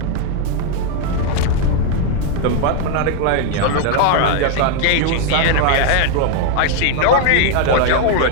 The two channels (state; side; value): different; both; correlation 0.01